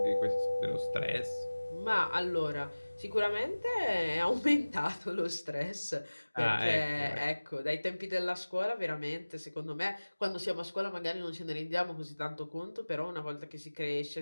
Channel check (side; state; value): both; inverted; correlation -1.00